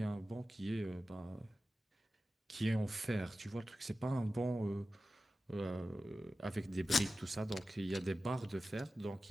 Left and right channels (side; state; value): both; normal; correlation 0.94